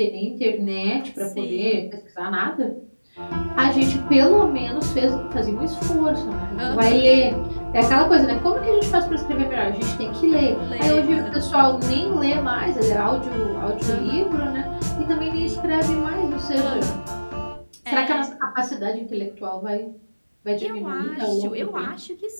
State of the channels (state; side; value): inverted; both; correlation -1.00